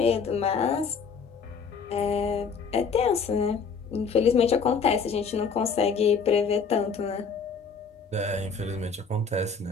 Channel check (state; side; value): quieter; right; 5.5 dB